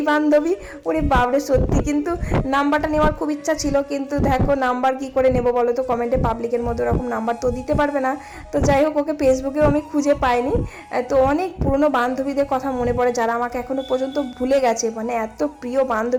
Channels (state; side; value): identical; both; correlation 1.00